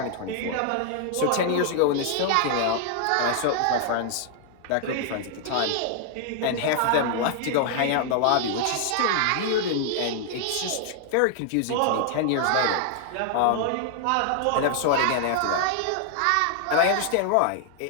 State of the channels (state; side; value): different; both; correlation 0.00